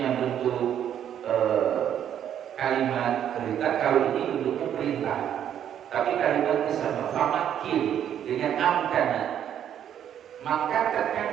bentuk kalimat perintah, kalau ini bentuknya perintah. Tapi kalimatnya sama, famakin dengan amkana. Maka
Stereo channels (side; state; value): left; quieter; 9.8 dB